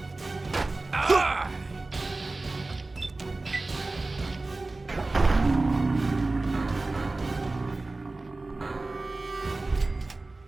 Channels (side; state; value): left; quieter; 3.2 dB